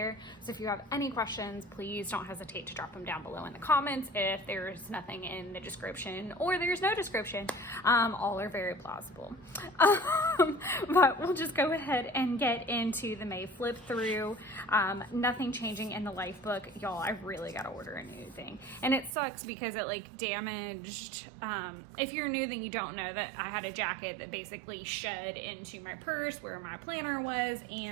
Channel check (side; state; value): left; drops out; at 19.1 s